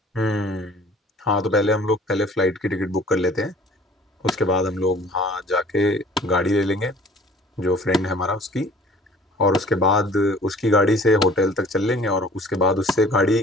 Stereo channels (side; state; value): both; normal; correlation 0.51